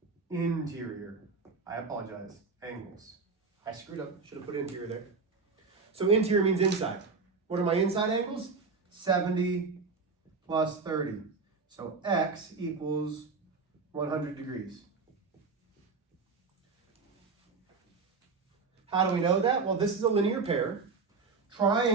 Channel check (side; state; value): left; quieter; 4.5 dB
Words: interior. I apologize, angles. I screwed up, should have put interior there. So interior means inside. What are my inside angles? 70 plus 30. So x equals 100 degrees. How do we know that? Well, this is a linear pair.